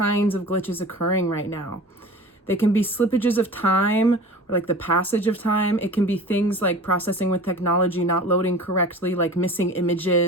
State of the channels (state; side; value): normal; both; correlation 0.39